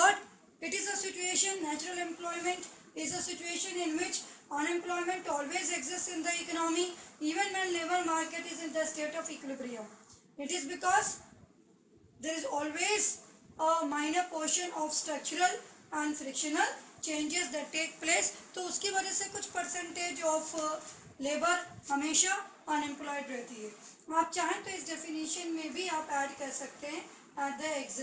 it is a situation, natural employment is a situation in which unemployment always exists in the economy even when labor market is in the state of equilibrium. It is because there is always a minor portion of structural and frictional changes that take place, तो उसकी वजह से कुछ परसेंटेज ऑफ लेबर हमेशा अनएम्प्लॉयड रहती है। आप चाहें तो इस डेफिनेशन में भी आप ऐड कर सकते हैं at the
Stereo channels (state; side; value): identical; both; correlation 1.00